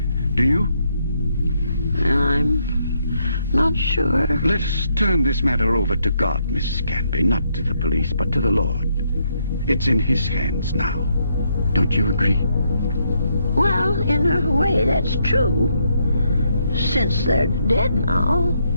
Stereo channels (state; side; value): inverted; both; correlation -0.75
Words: Do you? I'm not sure. Let us turn this matter over to God, Mrs. Canby. Not to the police, but to the Lord. It's in His hands now. Don't you agree? Well, in a way, that's true. Since they're dead now.